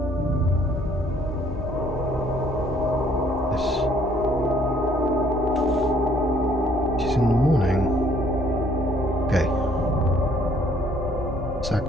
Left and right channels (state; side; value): normal; both; correlation 0.62